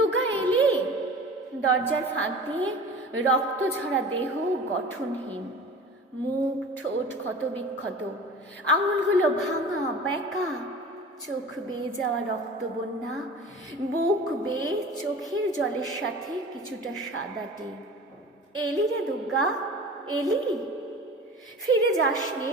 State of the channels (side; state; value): both; normal; correlation 0.39